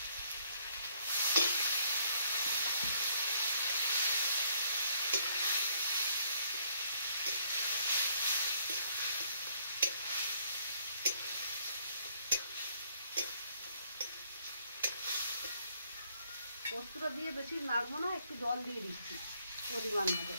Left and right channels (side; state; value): both; inverted; correlation -0.67